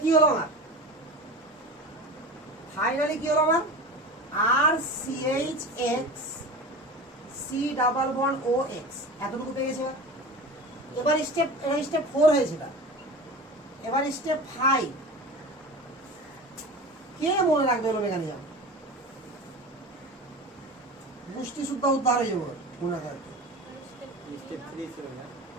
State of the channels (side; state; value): both; normal; correlation 0.32